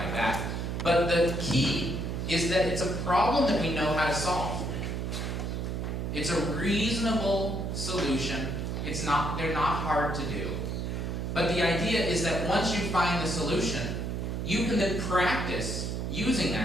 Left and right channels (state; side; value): noise; right; hum, 3 dB below the sound